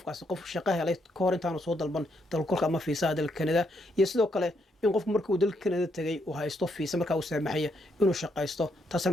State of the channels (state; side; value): normal; both; correlation 0.76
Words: qof shaqo helay ka hor intaanu soo dalban dalkugalka ama fiisaha dalka Canada iyo sidoo kale in qofku markuu dalka Canada tagay uu haysto fiisa markaa uu saamaxaya inuu shaqaysto taasina